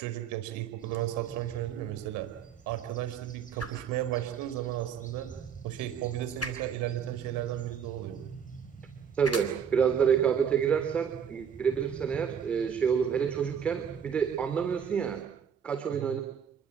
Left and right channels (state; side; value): quieter; left; 7.8 dB